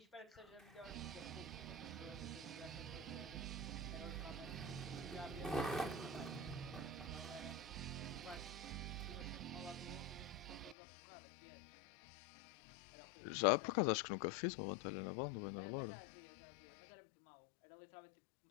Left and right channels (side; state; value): right; drops out; at 10.8 s